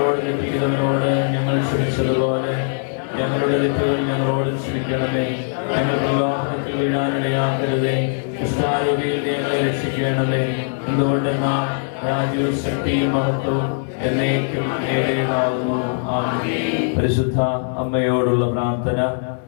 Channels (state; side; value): silent; right; digital silence